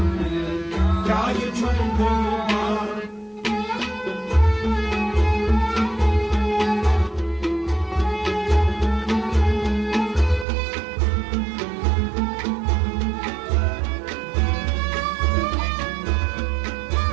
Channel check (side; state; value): left; drops out; at 10.5 s